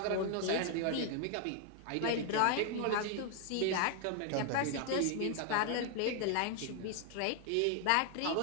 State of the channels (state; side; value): different; both; correlation 0.00